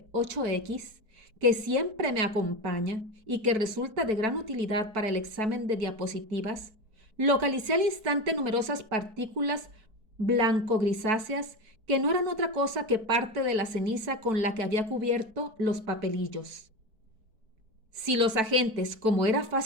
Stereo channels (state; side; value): late; left; 4.6 ms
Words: 8X, que siempre me acompaña y que resulta de gran utilidad para el examen de diapositivas, localicé al instante numerosas partículas blanco-grisáceas que no eran otra cosa que parte de la ceniza con la que había cubierto los papelillos. Si los agentes, como era